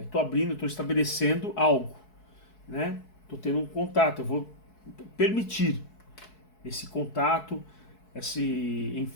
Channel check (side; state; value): right; late; 4.7 ms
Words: estou estabelecendo algo, né? Estou tendo um contato, eu vou permitir esse contato,